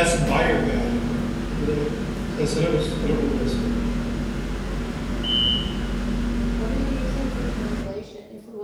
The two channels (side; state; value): both; identical; correlation 1.00